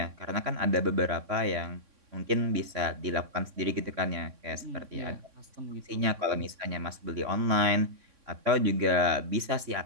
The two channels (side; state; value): left; late; 3.6 ms